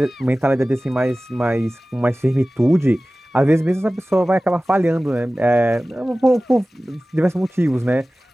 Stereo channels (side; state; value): both; normal; correlation 0.97